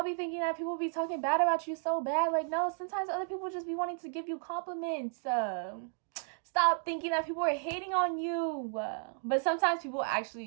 be thinking that people be talking bad about you so bad. Like, no, sometimes other people just be wanting to give you compliments. Stop thinking that people are hating on you. But sometimes people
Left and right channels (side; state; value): left; silent; 56 dB below the other